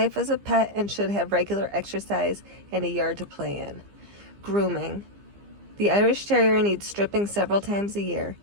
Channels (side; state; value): left; late; 15 ms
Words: as a pet and should have regular exercise and a yard to play in. Grooming: the Irish Terrier needs stripping several times a year.